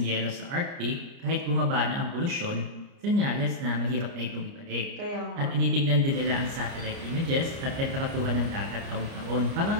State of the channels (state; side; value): late; left; 29 ms